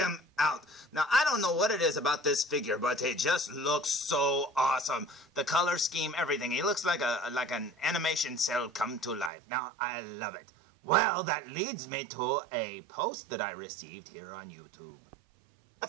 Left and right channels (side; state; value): left; drops out; at 9.3 s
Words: out. Now, I don't know what it is about this figure, but he just looks so awesome. The color scheme, everything. He looks like an animation cell come to life. Now, I love it. Well, that leads me to a post that I received here on YouTube. A